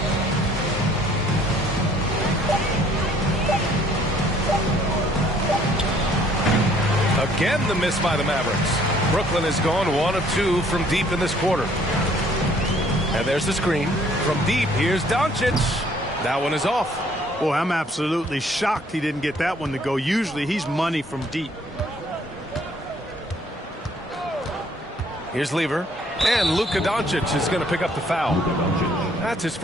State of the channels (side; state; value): both; normal; correlation 0.61